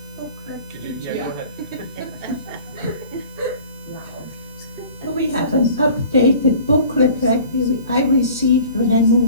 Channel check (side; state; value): both; inverted; correlation -0.46